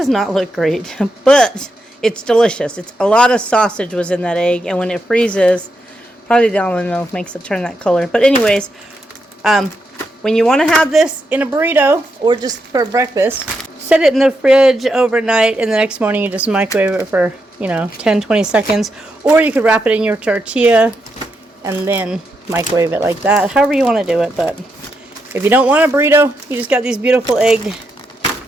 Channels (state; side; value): normal; both; correlation 0.83